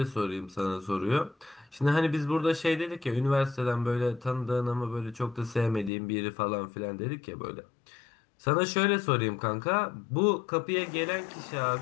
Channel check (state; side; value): drops out; right; at 5.9 s